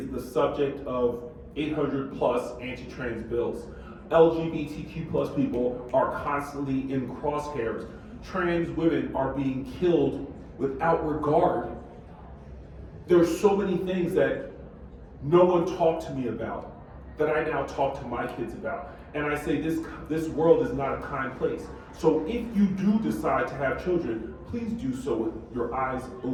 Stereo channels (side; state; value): both; identical; correlation 1.00